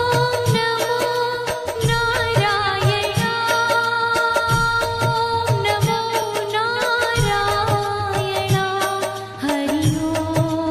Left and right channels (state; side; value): identical; both; correlation 1.00